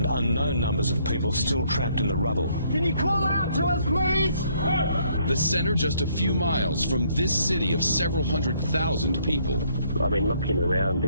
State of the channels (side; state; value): both; inverted; correlation -0.67